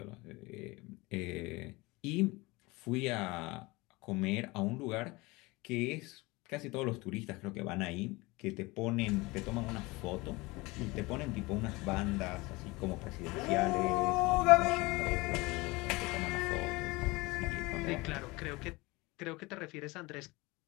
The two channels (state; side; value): quieter; right; 23.2 dB